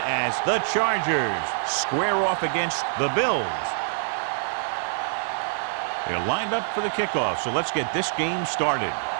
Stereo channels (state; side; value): silent; left; digital silence